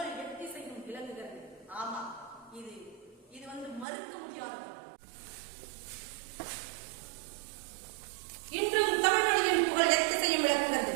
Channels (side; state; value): left; drops out; at 3.9 s